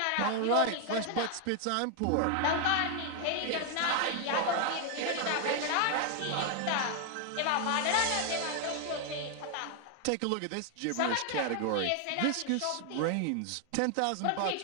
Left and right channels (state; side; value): different; both; correlation 0.00